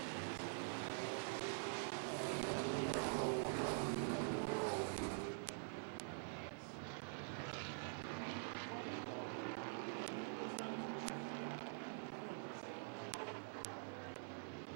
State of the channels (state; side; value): silent; left; digital silence